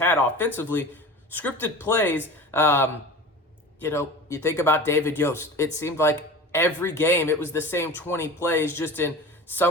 offensively, scripted plays, you think about David Yost. It seemed like every game it was the same 20 plays, just in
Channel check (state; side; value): normal; both; correlation 0.35